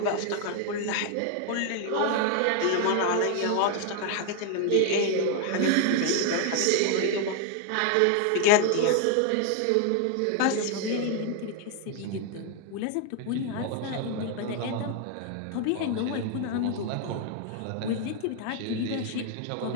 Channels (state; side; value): different; both; correlation 0.01